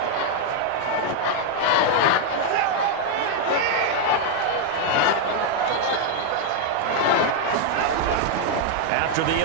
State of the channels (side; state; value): both; different; correlation 0.00